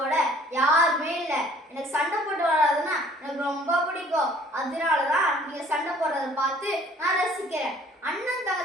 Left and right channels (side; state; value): both; normal; correlation 0.55